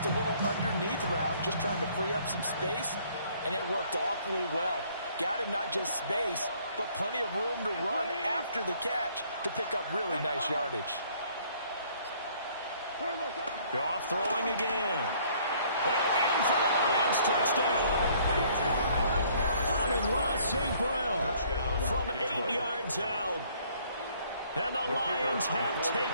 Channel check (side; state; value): both; inverted; correlation -0.61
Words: a little underneath route, just trying to free up some space, and it worked awfully well. Got him not just space, but plenty of room to run after the catch to pick up really nice yardage. Goff throwing again. And in for the Lions touchdown. Amon-Ra St. Brown from 8 yards out. And the Lions have